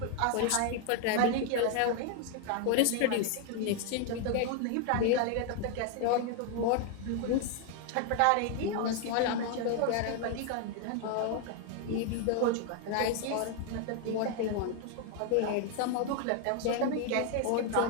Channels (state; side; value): different; both; correlation 0.00